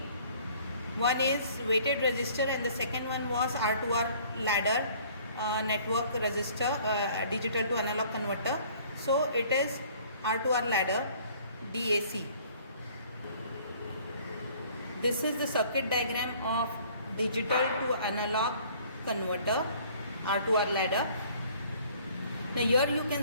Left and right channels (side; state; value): both; inverted; correlation -0.55